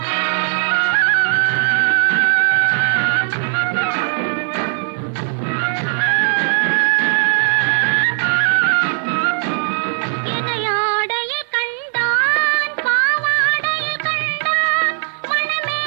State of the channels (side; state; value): left; silent; 68 dB below the other